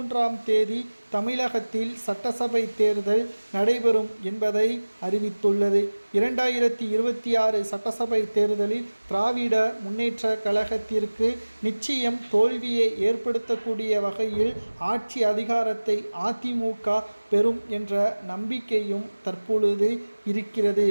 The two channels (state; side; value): inverted; both; correlation -1.00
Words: தேதி தமிழகத்தில் சட்டசபை தேர்தல் நடைபெறும் என்பதை அறிவித்துள்ளது. 2026 சட்டசபை தேர்தலில் திராவிட முன்னேற்ற கழகத்திற்கு நிச்சயம் தோல்வியை ஏற்படுத்தக்கூடிய வகையில் ஆட்சி அதிகாரத்தை அதிமுக பெறும் என்ற நம்பிக்கையும் தற்பொழுது இருக்கிறது.